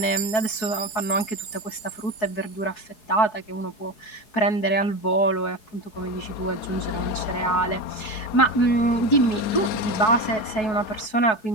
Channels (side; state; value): right; late; 4.6 ms